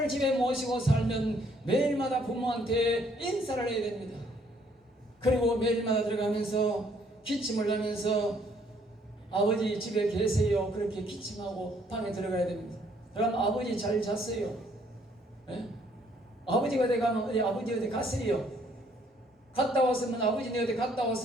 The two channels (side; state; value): both; normal; correlation 0.65